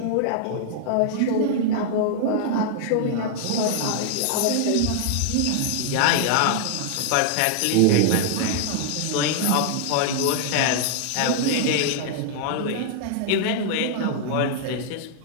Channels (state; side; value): different; both; correlation -0.01